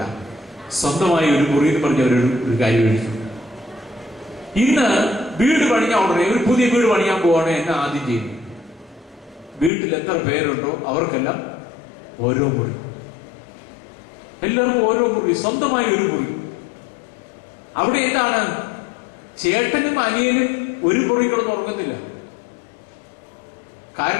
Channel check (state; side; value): drops out; right; at 9.7 s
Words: സ്വന്തമായ ഒരു മുറി എന്ന് പറഞ്ഞ ഒരു കാര്യം എഴുതി. ഇന്ന് വീട് പണിയാൻ ഉടനെ ഒരു പുതിയ വീട് പണിയാൻ പോവാണ് എന്നെ ആദ്യം ചെയ്യുന്നത്. വീട്ടിൽ എത്ര പേരുണ്ടോ അവർക്കെല്ലാം ഓരോ മുറി, എല്ലാവർക്കും ഓരോ മുറി, സ്വന്തമായി ഒരു മുറി. അവിടെ എന്താണ്, ചേട്ടനും അനിയനും ഒരു മുറി കിടന്ന് ഉറങ്ങുന്നില്ല.